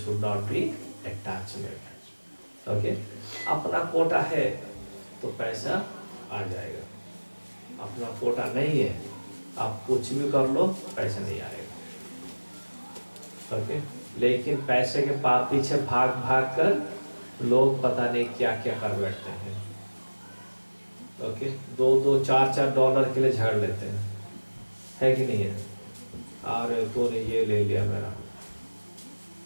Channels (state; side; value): inverted; both; correlation -1.00